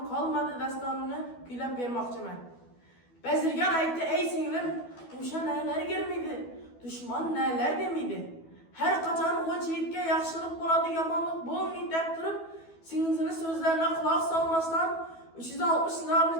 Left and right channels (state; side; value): late; right; 12 ms